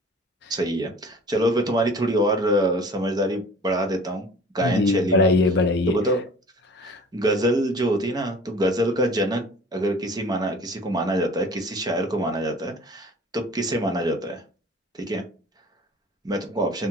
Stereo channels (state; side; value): normal; both; correlation 0.46